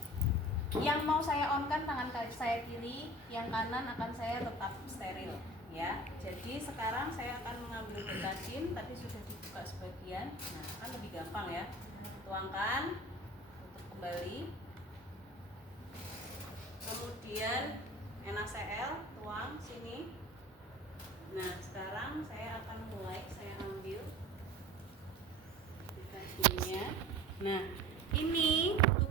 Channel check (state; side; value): normal; both; correlation 0.40